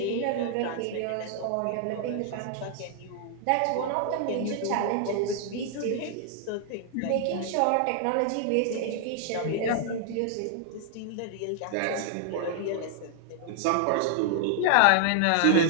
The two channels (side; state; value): both; different; correlation -0.01